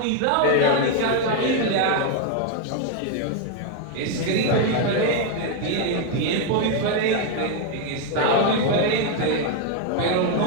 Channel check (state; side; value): different; both; correlation 0.01